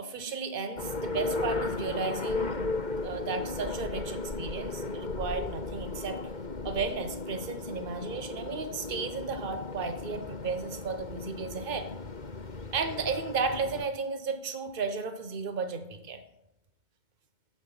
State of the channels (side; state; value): left; late; 2.5 ms